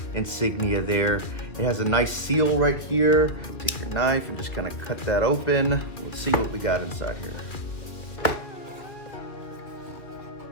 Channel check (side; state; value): right; late; 2.5 ms